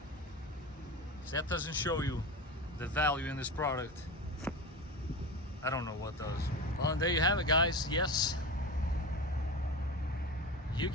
If that doesn't show you the value in this product, I don't know what does. Well, and there you have it, guys. Yes, you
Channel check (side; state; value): both; normal; correlation 0.26